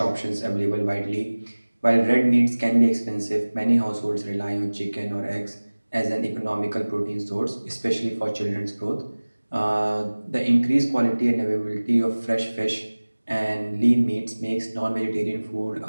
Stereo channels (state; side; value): inverted; both; correlation -1.00